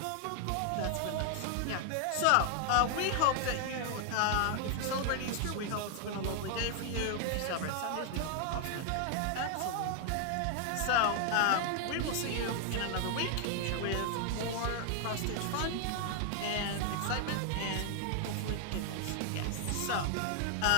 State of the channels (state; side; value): different; both; correlation 0.00